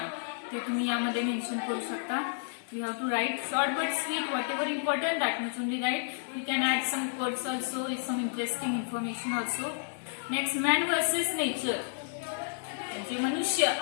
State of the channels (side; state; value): right; silent; digital silence